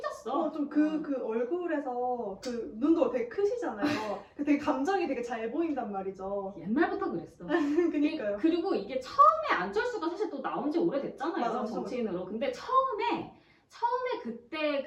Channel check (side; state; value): both; identical; correlation 1.00